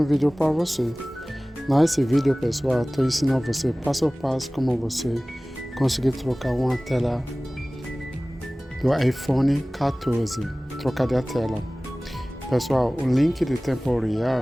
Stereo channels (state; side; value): normal; both; correlation 0.98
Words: vídeo para você. Nesse vídeo, pessoal, estou ensinando você passo a passo como você conseguir trocar uma tela do iPhone 14, trocar de tela. Pessoal, o link de tempo